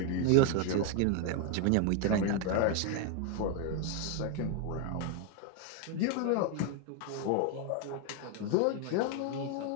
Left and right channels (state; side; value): different; both; correlation 0.01